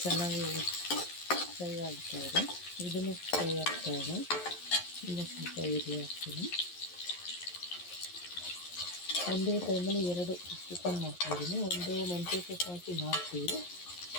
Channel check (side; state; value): right; late; 11 ms